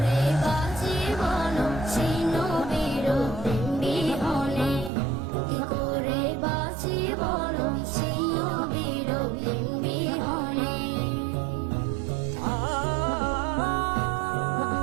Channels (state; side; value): drops out; left; at 4.9 s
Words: বাঁচি বলো সেই নবীর প্রেম বিহনে, কি করে বাঁচি বলো সেই নবীর প্রেম বিহনে।